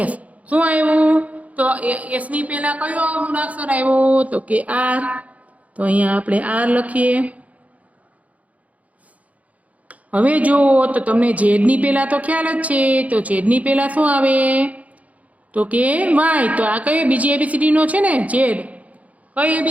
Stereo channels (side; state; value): left; late; 0.069 ms